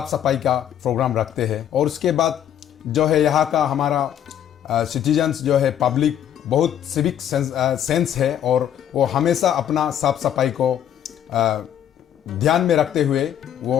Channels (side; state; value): right; quieter; 10.1 dB